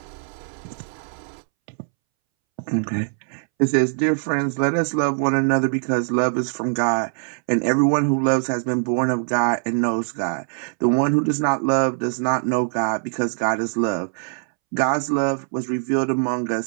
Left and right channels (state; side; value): silent; left; 64 dB below the other